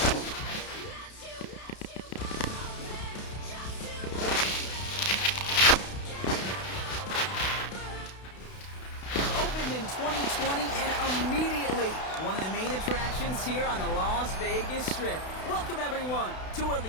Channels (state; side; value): late; right; 32 ms